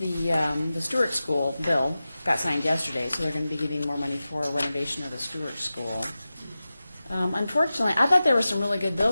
Stewart School bill got signed yesterday, so they're going to be getting more money for a renovation of the Stewart School. Unfortunately, I thought there were some really good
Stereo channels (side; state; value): both; inverted; correlation -0.95